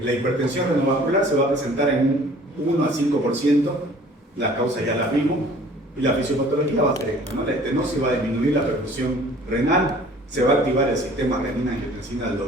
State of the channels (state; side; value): normal; both; correlation 0.51